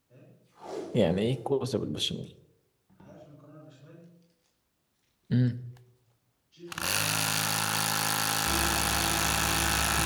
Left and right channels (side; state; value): both; identical; correlation 1.00